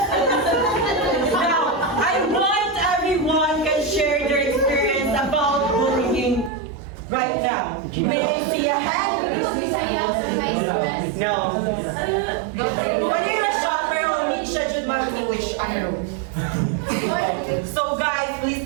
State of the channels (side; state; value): left; drops out; at 6.5 s